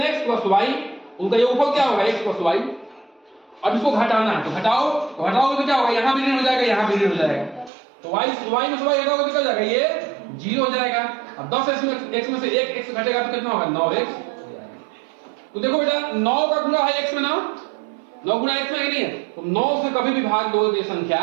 + y, उनका योगफल क्या होगा x + y। अब इसको घटाना है, तो घटाओ तो क्या होगा, यहां भी ऋण हो जाएगा, यहां भी ऋण हो जाएगा, तो y में से y घटाओगे निकल जाएगा, ये 0 हो जाएगा। अब 10x में से 1x घटेगा तो कितना होगा 9x। तो देखो बेटा 9 का गुणा है x में ना, 9 गुणा x में नहीं है, तो 9 से कभी भी भाग दो तो ये संख्या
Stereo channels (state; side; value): drops out; left; at 7.7 s